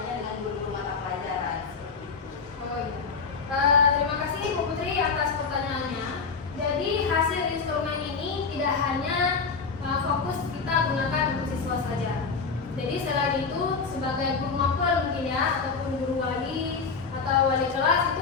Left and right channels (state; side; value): quieter; right; 5.1 dB